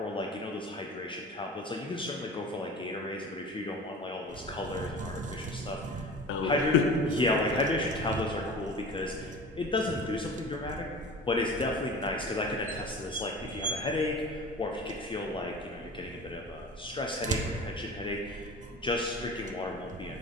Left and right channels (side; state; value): both; normal; correlation 0.37